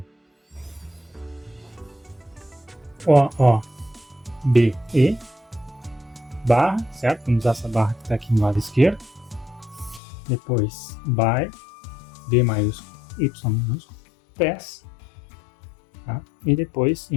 OOBE barra, certo? Vamos usar essa barra que está aqui no lado esquerdo. Depois by, B maiúsculo, Y minúsculo, PES, tá? E depois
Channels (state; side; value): drops out; right; at 10.0 s